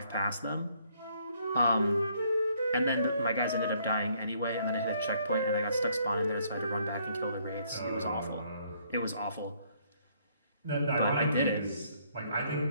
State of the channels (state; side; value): inverted; both; correlation -0.67